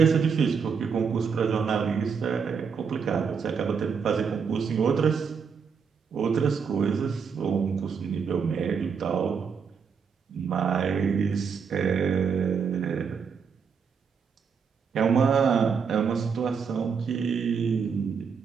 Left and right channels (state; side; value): quieter; left; 6.2 dB